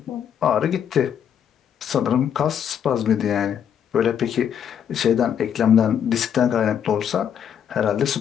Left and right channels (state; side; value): quieter; right; 8.6 dB